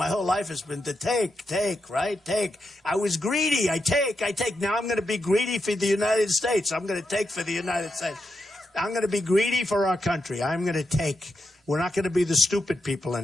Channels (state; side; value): normal; both; correlation 0.85